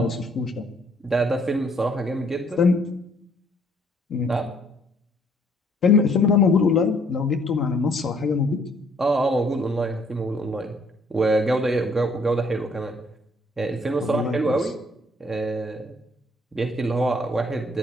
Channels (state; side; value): normal; both; correlation 0.64